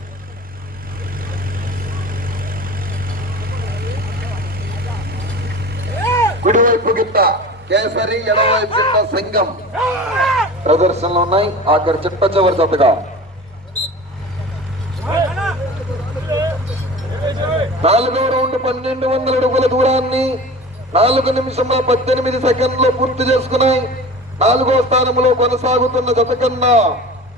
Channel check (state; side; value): normal; both; correlation 0.36